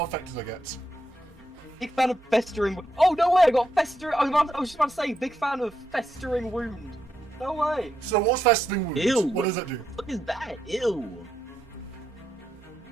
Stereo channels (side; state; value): both; normal; correlation 0.81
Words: effect did I get? Big fan of festering. Oh no way! I got festering. I was just about to say, big fan of festering wound. No way. So what's festering wound? Ew. What does it do? What is that? Ew.